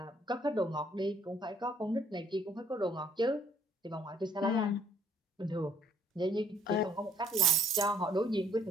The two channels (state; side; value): normal; both; correlation 0.63